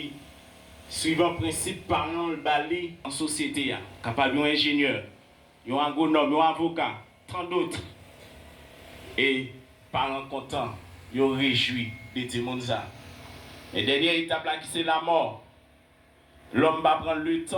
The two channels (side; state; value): both; identical; correlation 1.00